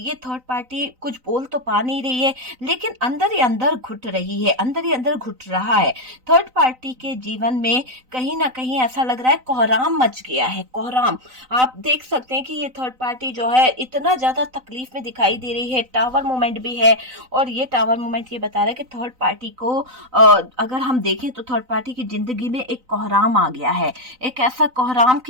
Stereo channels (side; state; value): left; late; 3.9 ms